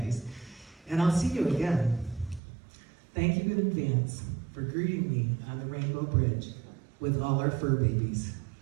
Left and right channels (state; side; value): drops out; left; at 2.4 s